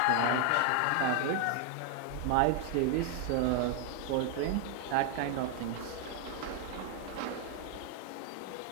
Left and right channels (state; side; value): different; both; correlation 0.00